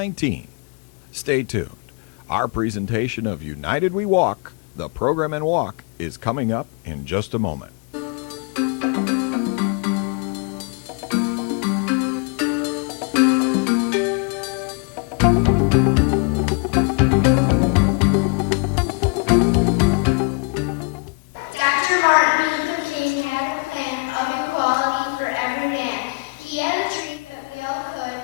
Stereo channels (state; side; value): quieter; right; 33.9 dB